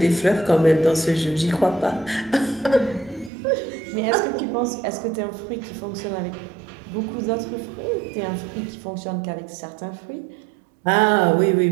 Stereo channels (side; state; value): left; drops out; at 3.3 s